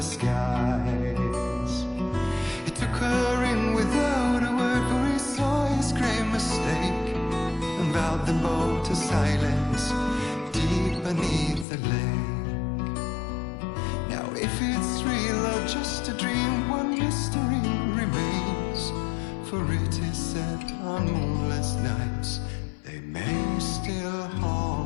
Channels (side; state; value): right; drops out; at 11.7 s